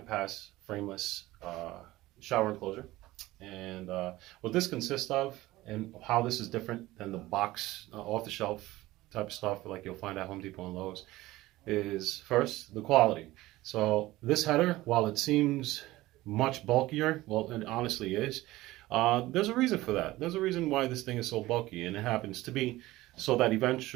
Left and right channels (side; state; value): left; quieter; 17.8 dB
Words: frameless shower enclosure. And what this consists of and how this is different than the box off-the-shelf type of stuff like you'll find at Home Depot and Lowe's is first the quality. So this header, while it seems much bulkier, well, it honestly is, there's a reason for that. There's a reason why this thing is so bulky, and it happens to be so that